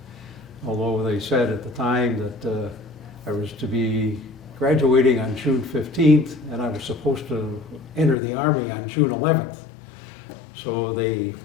Although they said at the time that I was to be graduating on June 15th, and I was supposed to enter the Army on June 11th. So they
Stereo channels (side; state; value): right; drops out; at 8.2 s